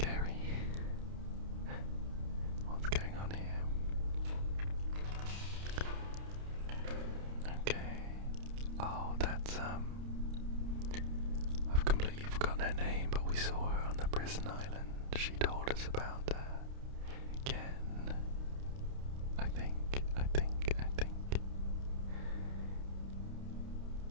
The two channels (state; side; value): late; left; 29 ms